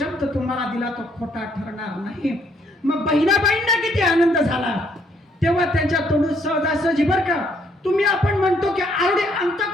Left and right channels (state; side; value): normal; both; correlation 0.68